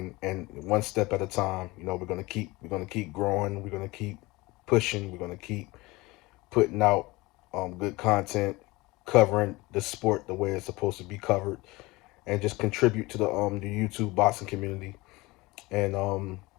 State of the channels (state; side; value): quieter; right; 21.9 dB